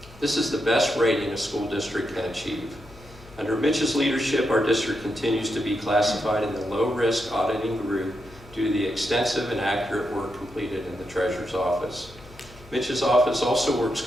This is the best rating a school district can achieve. Under Mitch's leadership, our district continues to be classified in the low-risk auditing group due to the extensive and accurate work completed in the treasurer's office. Mitch's office also works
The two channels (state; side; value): noise; left; hum, 21 dB below the sound